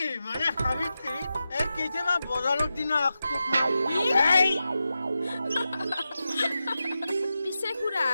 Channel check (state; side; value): inverted; both; correlation -0.91